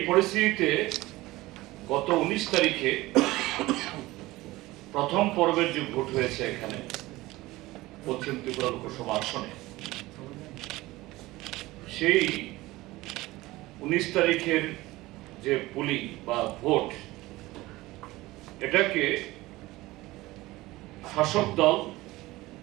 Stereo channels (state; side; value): quieter; left; 19.0 dB